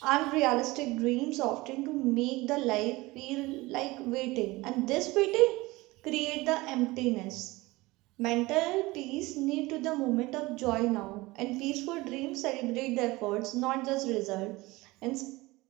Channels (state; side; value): quieter; left; 21.1 dB